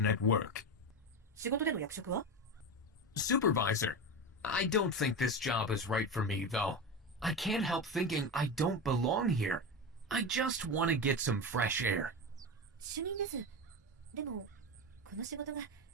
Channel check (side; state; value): both; normal; correlation 0.20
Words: at work? 仕事での役職は？ Supervisor. I don't think this job is right for me, though. I can't help thinking I don't belong here. I just want to get some fresh air. 主任です。でも、この仕事が